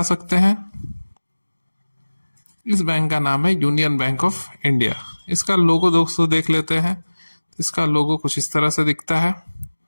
सकते हैं? इस बैंक का नाम है यूनियन बैंक ऑफ इंडिया। इसका लोगो दोस्तों देख लेते हैं। इसका लोगो कुछ इस तरह से दिखता है।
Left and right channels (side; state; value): both; inverted; correlation -1.00